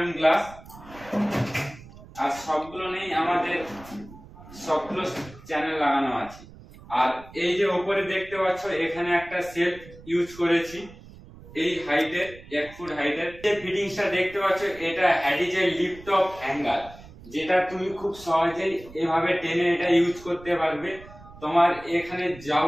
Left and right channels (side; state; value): right; noise; rumble, 19 dB below the sound